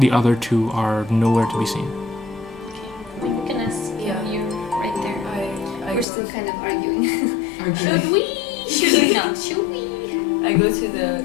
other two are nowhere to be seen. Okay, we can ask Yeah. you right there. I We're go still to- kind of arguing. Our Should we? Should we not? Should we? I go to the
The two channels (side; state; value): right; drops out; at 6.1 s